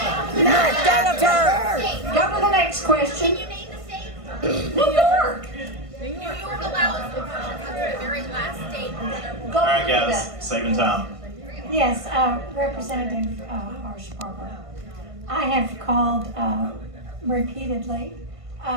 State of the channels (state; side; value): late; left; 1.5 ms